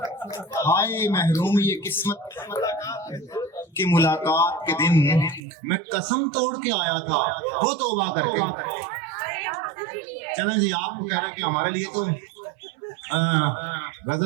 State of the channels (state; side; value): drops out; left; at 5.4 s